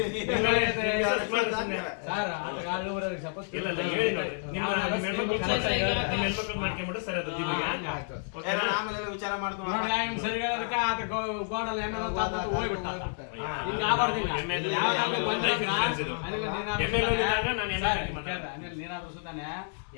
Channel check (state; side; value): silent; right; digital silence